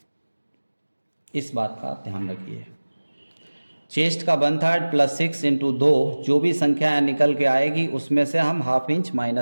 इस बात का ध्यान रखिए। चेस्ट का 1/3 + 6 × 2, जो भी संख्या निकल के आएगी उसमें से हम ½ इंच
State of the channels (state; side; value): inverted; both; correlation -1.00